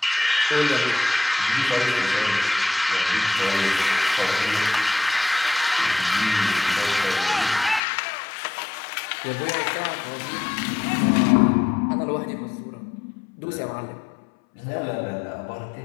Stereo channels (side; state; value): right; drops out; at 7.8 s